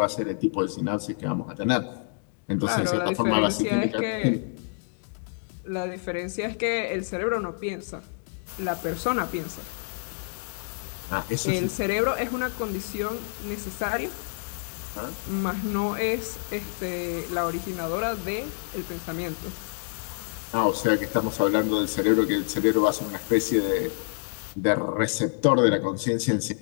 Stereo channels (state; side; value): silent; right; digital silence